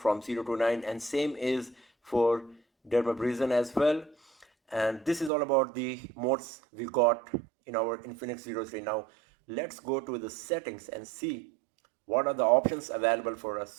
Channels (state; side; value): drops out; left; at 5.3 s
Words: 0 to 9, and same is for dermabrasion as well. And this is all about the modes we got in our Infinix Zero 3. Now let's go to the settings and see what are the options available for us.